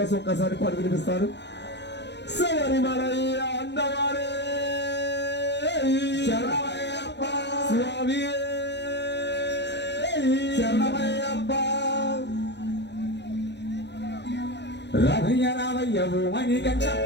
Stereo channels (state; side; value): late; right; 0.50 ms